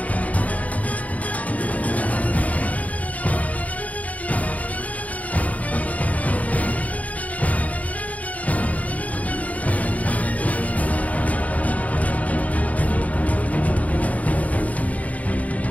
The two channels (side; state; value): right; late; 0.071 ms